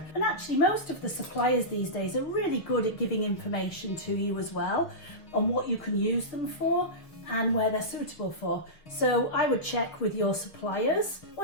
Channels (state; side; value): late; right; 6.1 ms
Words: And actually most of the suppliers these days are really good at giving information to you as well on what you can use them for and where they're suitable for. So I would check with your suppliers.